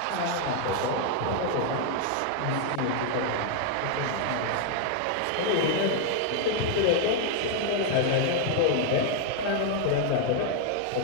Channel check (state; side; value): different; both; correlation 0.00